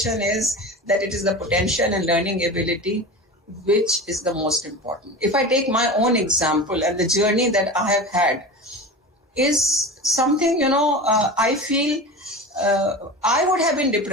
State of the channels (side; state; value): both; normal; correlation 0.30